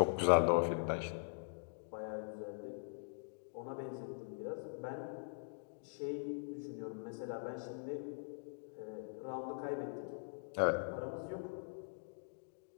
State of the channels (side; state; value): right; silent; digital silence